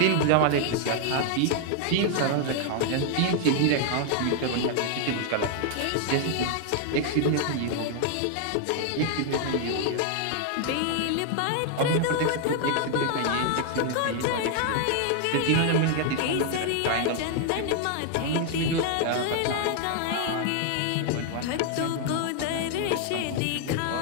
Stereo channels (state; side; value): different; both; correlation 0.00